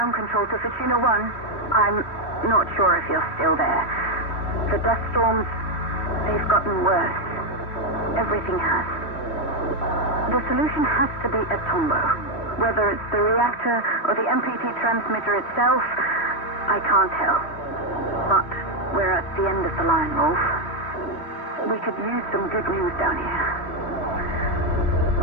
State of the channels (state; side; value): late; right; 3.1 ms